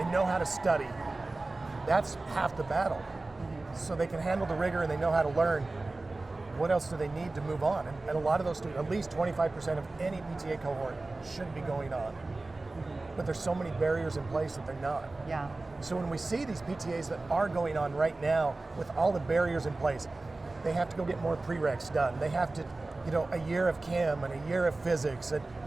know how to study. That's half the battle. So they can handle the rigor and they know how to learn. What else do they need to move on? And a lot of those students, at least 25% of any PTA cohort should be going on. But there's so many barriers in place that they're not. Yeah. So when we see these PTAs that are going on right now with all the barriers in place, they have to go get more prereqs done. They have to, a year of chem and a year of physics and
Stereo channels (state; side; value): quieter; left; 3.2 dB